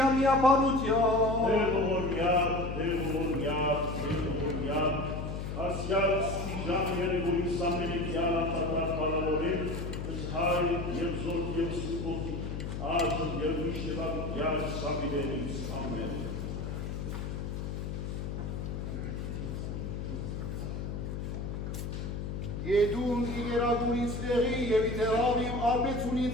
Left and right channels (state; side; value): noise; left; hum, 5 dB below the sound